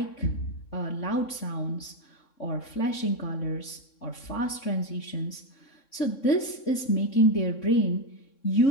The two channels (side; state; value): right; late; 3.6 ms